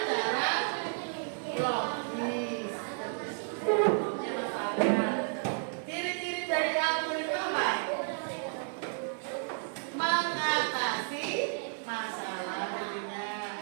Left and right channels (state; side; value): silent; left; 56 dB below the other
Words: cara logis. Ciri-ciri dari atur itu apa? Mengatasi masalah